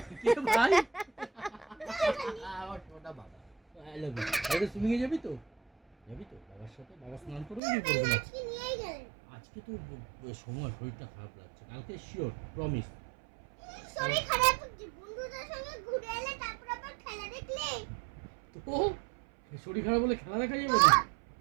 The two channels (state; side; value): drops out; left; at 7.6 s